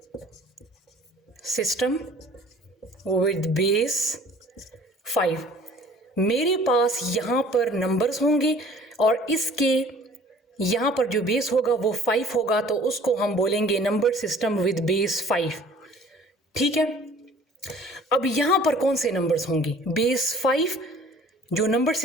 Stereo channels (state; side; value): normal; both; correlation 0.51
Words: सिस्टम विद बेस 5। मेरे पास यहाँ पर नंबर्स होंगे और इसके यहाँ पर जो बेस होगा वो 5 होगा, तो उसको हम बोलेंगे नंबर सिस्टम विद बेस 5। ठीक है, अब यहाँ पर कौन से नंबर्स होंगे? बेस 5 जो नंबर